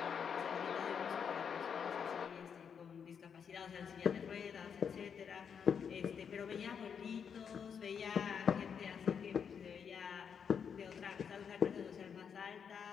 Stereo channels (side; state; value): right; quieter; 7.1 dB